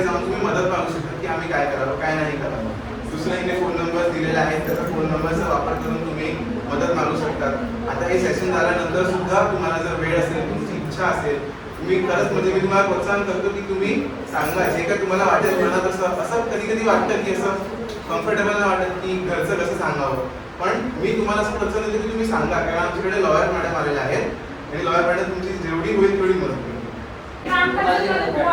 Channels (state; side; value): identical; both; correlation 1.00